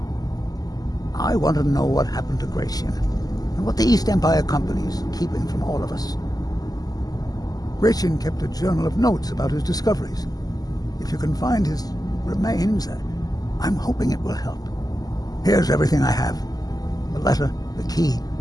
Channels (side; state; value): right; late; 0.18 ms